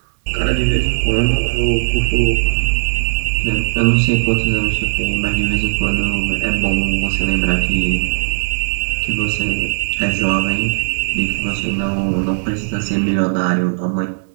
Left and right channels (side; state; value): left; silent; 62 dB below the other